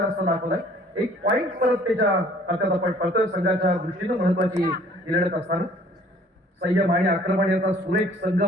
रस्ता दाखवलाय. एक पॉईंट परत त्याच्या खात्यात आपण पडतोय. संघाच्या दृष्टीनं महत्वाची लढत असताना संयम आणि आक्रमण याचा सुरेख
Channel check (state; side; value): normal; both; correlation 0.55